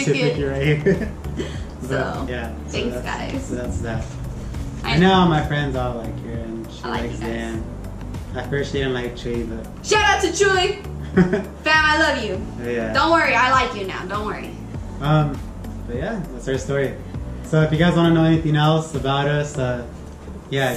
right here. So, yeah. thanks, that's, guys. So that's that. And now my friends all like her, and she I like likes you guys. Dan. At first she didn't like Chewy, but Shout out to Chuy. Fam, I love you. yeah. Don't worry, I like you now. Don't worry. But yeah, that's our story. So if you guys want to know anything else about us, yeah,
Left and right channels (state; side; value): identical; both; correlation 1.00